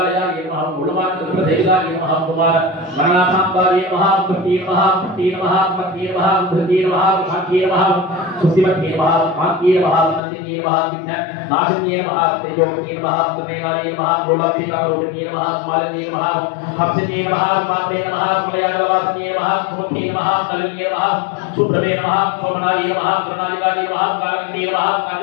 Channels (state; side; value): drops out; right; at 10.2 s